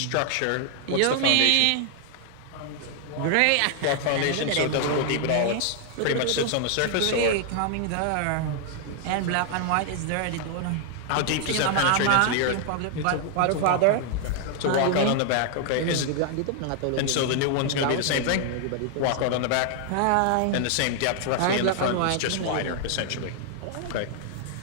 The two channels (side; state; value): both; different; correlation 0.00